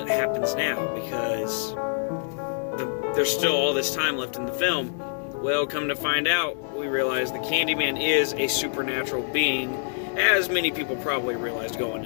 happens now? Because there's still all this time left in the film. Well, come to find out, we realize the Candyman is a supernatural being, as many people probably realized going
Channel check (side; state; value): right; silent; 61 dB below the other